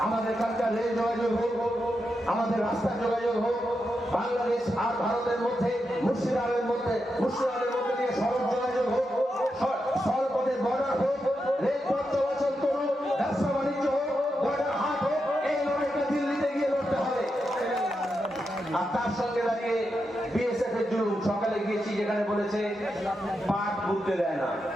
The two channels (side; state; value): both; normal; correlation 0.86